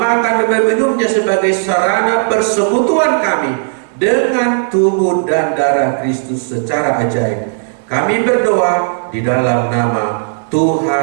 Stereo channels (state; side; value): silent; left; digital silence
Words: dan meminumnya sebagai sarana persekutuan kami dengan tubuh dan darah Kristus secara ajaib. Kami berdoa di dalam nama